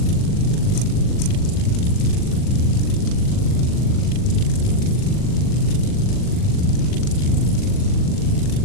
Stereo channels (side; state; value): right; late; 40 ms